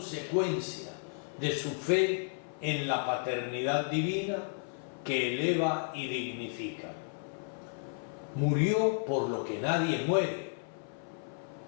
de su fe en la paternidad divina que eleva y dignifica. Murió por lo que nadie muere.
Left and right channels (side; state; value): right; silent; 56 dB below the other